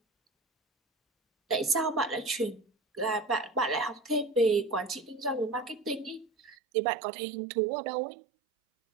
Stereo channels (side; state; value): left; drops out; at 6.6 s